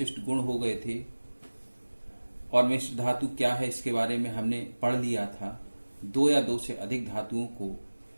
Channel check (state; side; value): inverted; both; correlation -1.00